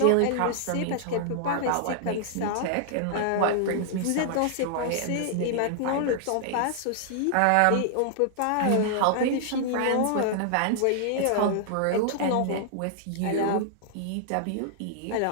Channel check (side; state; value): both; different; correlation -0.01